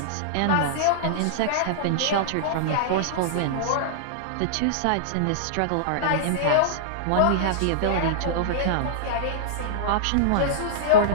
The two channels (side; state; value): both; different; correlation -0.02